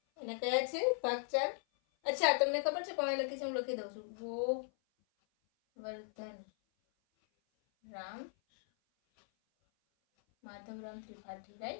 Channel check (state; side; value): silent; right; 52 dB below the other